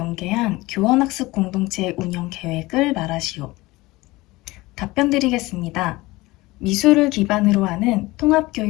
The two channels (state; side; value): quieter; right; 20.5 dB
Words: 교원학습 공동체 운영 계획을 말하시오. 답변 드리겠습니다. 미술을 기반으로 하는